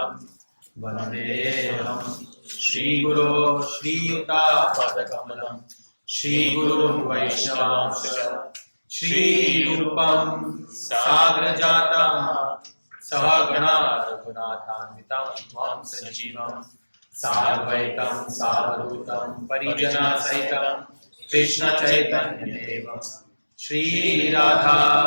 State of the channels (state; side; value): inverted; both; correlation -1.00